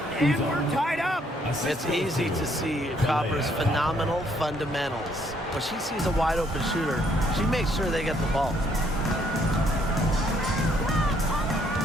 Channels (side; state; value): both; normal; correlation 0.68